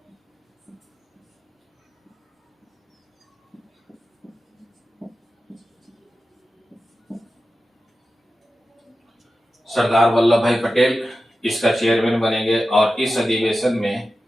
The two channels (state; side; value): normal; both; correlation 0.93